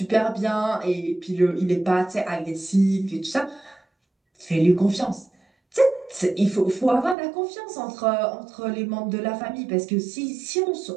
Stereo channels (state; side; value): drops out; left; at 7.2 s